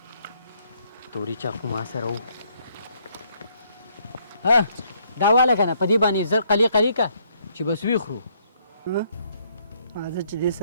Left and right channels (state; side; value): inverted; both; correlation -0.69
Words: توري چاقو ما سره و ها دا واله که نه په دې باندې زر قلي قلي که چې بس ویخورو راځه چې دې